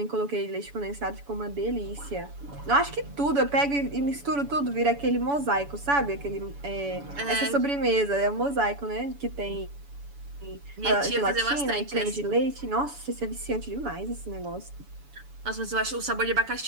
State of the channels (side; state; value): left; late; 7.0 ms